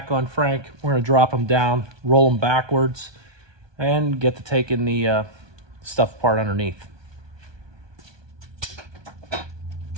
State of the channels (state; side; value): late; left; 1.2 ms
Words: on Frank. We're going to drop them down, roll them backwards, and get to taking the stuff apart underneath.